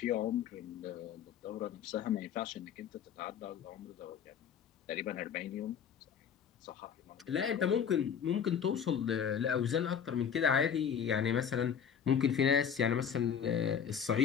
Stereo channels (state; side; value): quieter; right; 7.8 dB